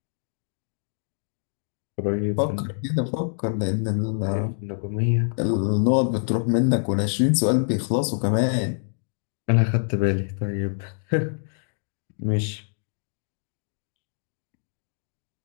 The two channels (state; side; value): silent; right; digital silence